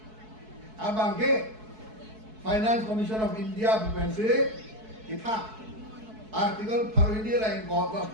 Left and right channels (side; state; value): left; late; 4.6 ms